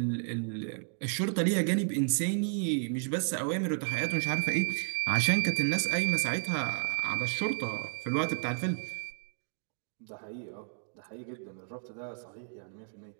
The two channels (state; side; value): silent; left; 56 dB below the other